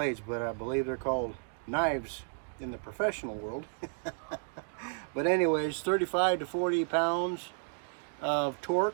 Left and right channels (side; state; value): left; silent; 56 dB below the other